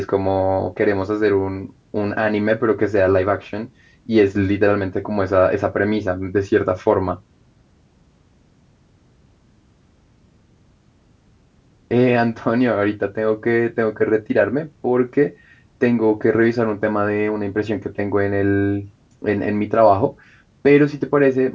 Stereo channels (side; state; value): both; identical; correlation 1.00